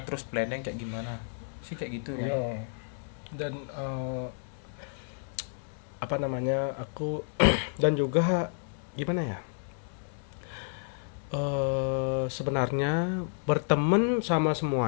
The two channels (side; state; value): right; silent; 57 dB below the other